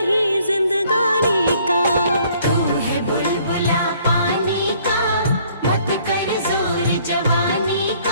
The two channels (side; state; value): both; inverted; correlation -0.61